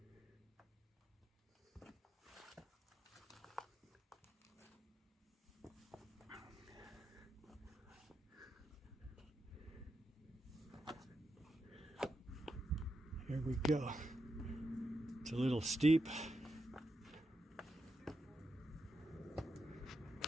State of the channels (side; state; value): both; normal; correlation 0.86